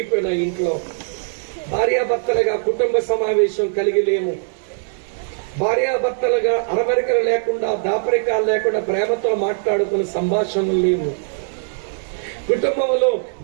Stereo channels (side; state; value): left; silent; digital silence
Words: ఇంట్లో. భార్యాభర్తలుగా కుటుంబ సమావేశం కలిగి లేము. భార్యాభర్తలుగా అరమరికలు లేకుండా, దాపరికాలు లేకుండా ప్రేమతో మాట్లాడుకునే సంభాషణలు లేవు. కుటుంబంలో